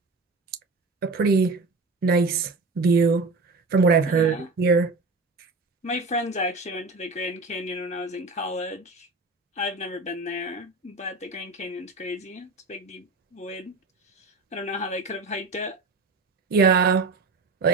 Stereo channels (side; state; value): left; quieter; 3.5 dB